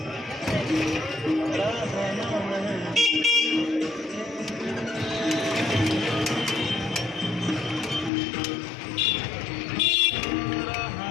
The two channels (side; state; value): right; drops out; at 8.1 s